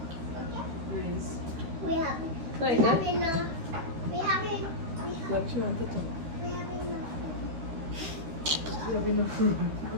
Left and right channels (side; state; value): left; late; 13 ms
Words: We have Like enough. that? We have enough. What you want to do? We have enough. You have enough room,